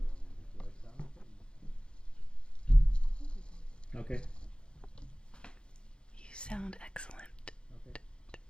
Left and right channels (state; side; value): late; right; 0.053 ms